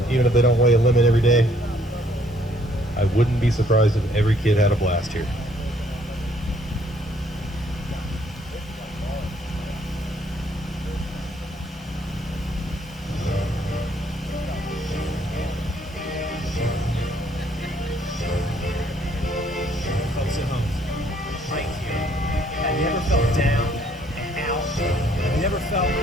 even if they don't weigh a limit every day. I wouldn't be surprised if every kid had a blast here.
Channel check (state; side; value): normal; both; correlation 0.65